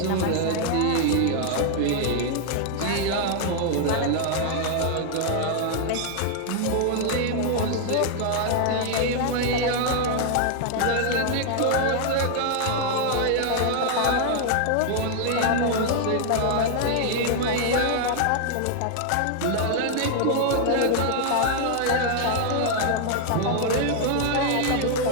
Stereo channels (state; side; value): different; both; correlation 0.00